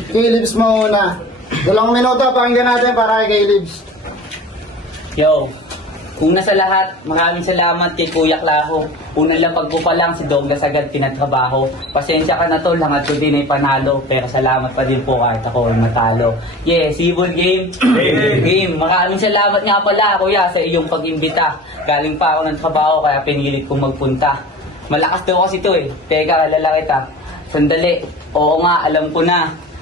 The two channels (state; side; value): normal; both; correlation 0.38